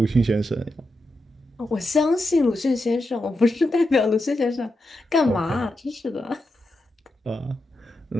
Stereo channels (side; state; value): both; normal; correlation 0.87